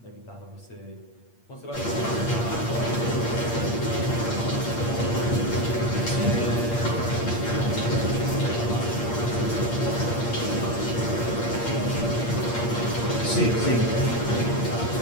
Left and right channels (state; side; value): late; right; 8.6 ms